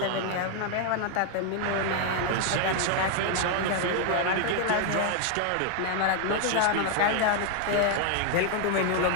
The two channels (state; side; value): different; both; correlation 0.00